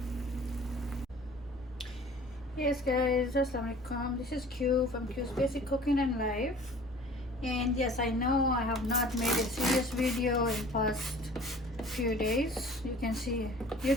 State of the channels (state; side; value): normal; both; correlation 0.47